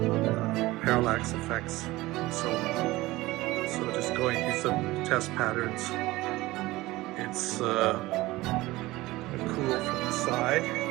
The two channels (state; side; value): quieter; left; 19.1 dB